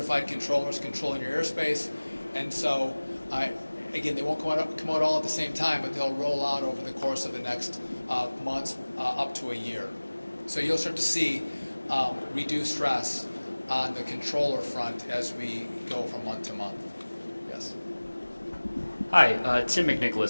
controllers controlling your airspace. And so, again, they won't come out all at the same time, but they'll roll out over the course of the next months up to a year. So you'll start to see reduced stress on the controller front as we go from month to month. Yes. Hi, Tim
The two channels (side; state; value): both; inverted; correlation -1.00